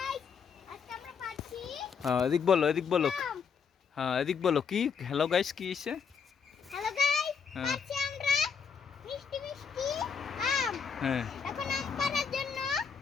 হ্যাঁ এদিক বলো, এদিক বলো। হ্যাঁ এদিক বলো কি হ্যালো গাইস কি এসে? হ্যালো গাইস, হ্যাঁ পাচ্ছি আমরা মিষ্টি মিষ্টি আম। হ্যাঁ এখন আম পাড়ার জন্য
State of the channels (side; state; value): right; quieter; 6.4 dB